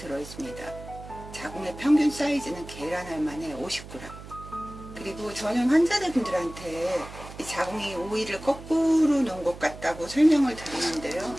자궁의 평균 사이즈는 계란 알만에 50g. 그리고 저는 환자분들한테 이 자궁이 오이를 거꾸로 놓은 것 같다고 설명을 드리는데요.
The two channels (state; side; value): noise; right; hum, 15 dB below the sound